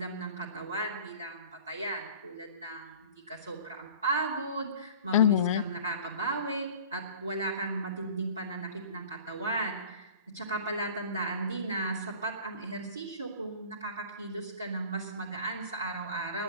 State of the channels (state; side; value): inverted; both; correlation -0.43